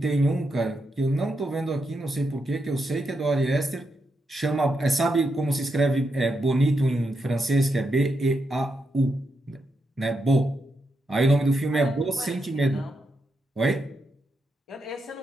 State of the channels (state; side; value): normal; both; correlation 0.83